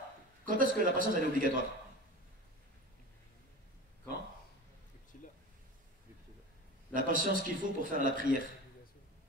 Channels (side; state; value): both; normal; correlation 0.32